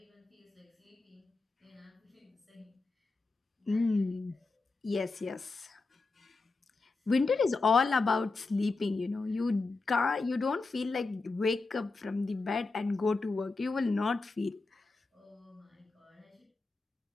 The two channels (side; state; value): right; quieter; 3.7 dB